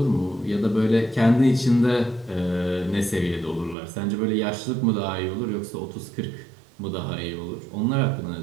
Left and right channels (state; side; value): drops out; left; at 3.8 s